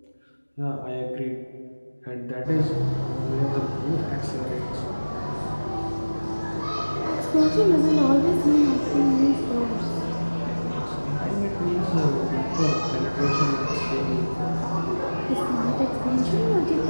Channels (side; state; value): both; inverted; correlation -1.00